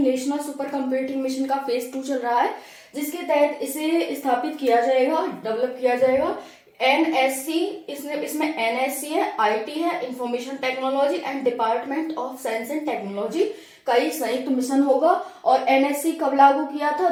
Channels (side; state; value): both; identical; correlation 1.00